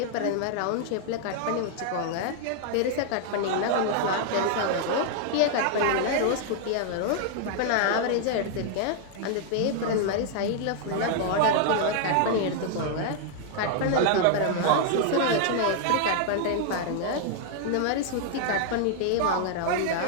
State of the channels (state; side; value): different; both; correlation 0.00